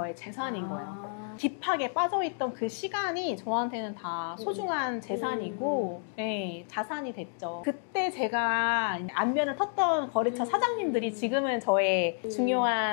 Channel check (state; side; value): silent; right; 58 dB below the other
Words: 재산인 거예요. 딥하게 빠져있던 그 시간이 저한테는 다 소중한 재산이고 자산이 됐죠. 그때 제가 안면을 텄던 거래처 사장님들이 지금은 저의